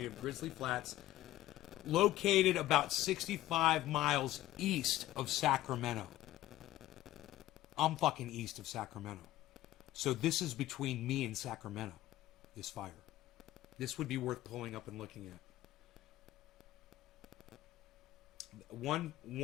of Grizzly Flats, located about 65 miles east of Sacramento. I'm fucking east of Sacramento. So this is between me and Sacramento, this fire. This would be worth pulling up and looking at. One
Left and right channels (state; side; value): quieter; right; 15.1 dB